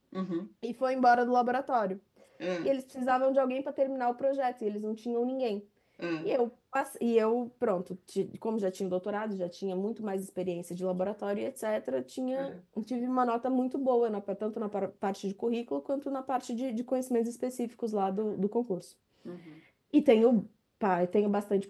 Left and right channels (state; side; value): identical; both; correlation 1.00